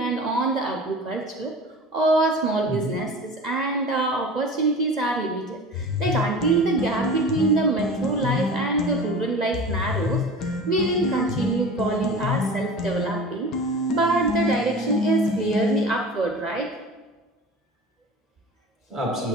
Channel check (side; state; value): both; normal; correlation 0.37